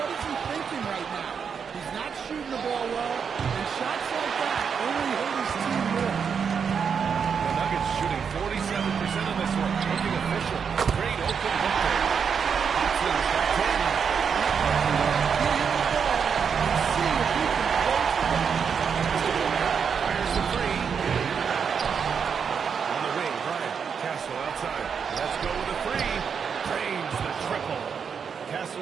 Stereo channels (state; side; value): quieter; left; 6.6 dB